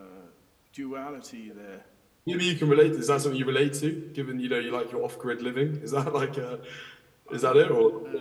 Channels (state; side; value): identical; both; correlation 1.00